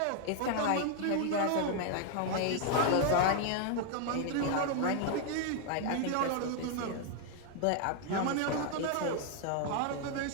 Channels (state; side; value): different; both; correlation 0.00